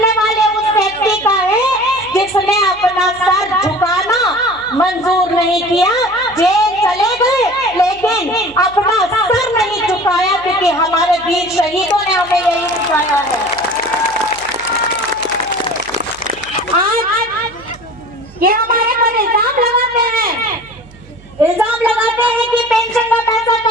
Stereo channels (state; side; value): noise; right; hum, 23 dB below the sound